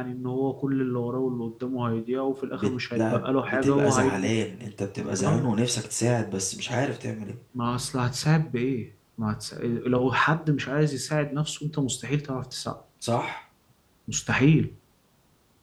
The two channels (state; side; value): identical; both; correlation 1.00